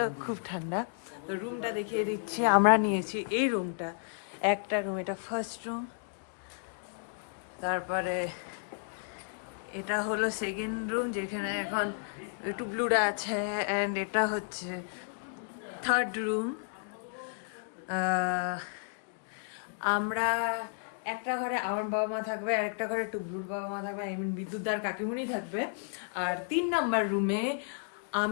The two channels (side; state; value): right; silent; digital silence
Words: খুব ঠান্ডা। তো রুমটা দেখিয়ে দিচ্ছি। আমরা নিয়েছি এই রুমটা, একটা রুম, এটা ফার্স্ট রুম। তারপরে এটা হলো সেকেন্ড রুম যেখানে এখন টুবলুরা আছে, অ্যান্ড এটা হচ্ছে থার্ড রুম। আমরা একটা ঘরে আমার বাবা মা থাকবে আর একটা ঘরে টুবলুর বাবা মা থাকবে, আই মিন বিদ্যুৎদার কাকিমুনি থাকবে। আর 3 নাম্বার রুমে